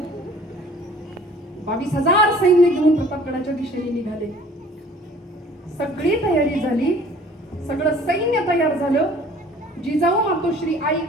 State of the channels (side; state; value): both; normal; correlation 0.51